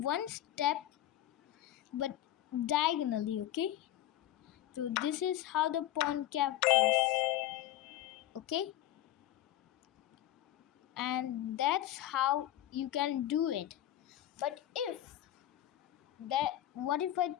step, but diagonally. Okay, so this is how the pawn captures. Okay, and that's how you can do it. But what if I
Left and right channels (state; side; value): quieter; right; 13.4 dB